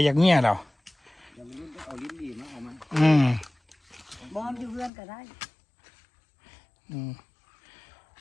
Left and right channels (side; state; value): right; drops out; at 4.9 s